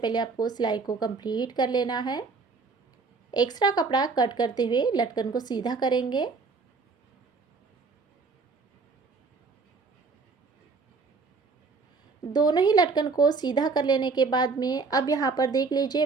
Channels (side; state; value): left; quieter; 4.4 dB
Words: आपको सिलाई को कंप्लीट कर लेना है। एक्स्ट्रा कपड़ा कट करते हुए लटकन को सीधा करेंगे। दोनों ही लटकन को सीधा कर लेने के बाद में अब यहाँ पर देख